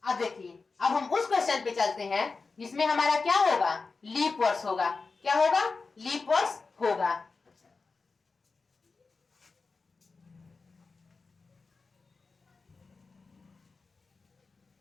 अब देखिए, अब हम उस क्वेश्चन पे चलते हैं जिसमें हमारा क्या होगा, लीप वर्ष होगा। क्या होगा, लीप वर्ष होगा।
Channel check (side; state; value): right; quieter; 4.3 dB